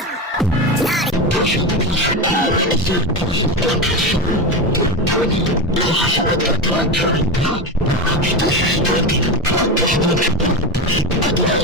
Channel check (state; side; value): normal; both; correlation 0.18